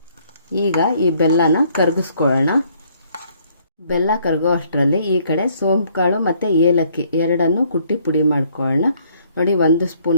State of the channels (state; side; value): inverted; both; correlation -0.65